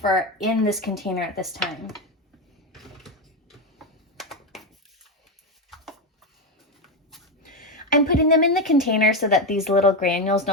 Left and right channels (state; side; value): normal; both; correlation 0.11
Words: in this container at this time. I'm putting them in the container so that these little granules